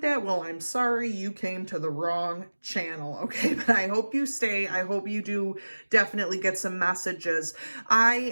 that, well, I'm sorry, you came to the wrong channel, okay? But I hope you stay. I hope you do definitely get some messages. I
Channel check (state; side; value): inverted; both; correlation -1.00